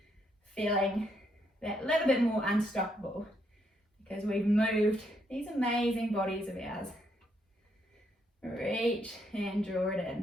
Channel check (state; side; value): normal; both; correlation 0.75